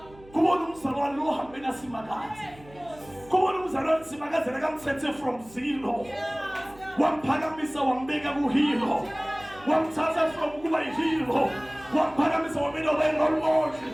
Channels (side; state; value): right; noise; hum, 23 dB below the sound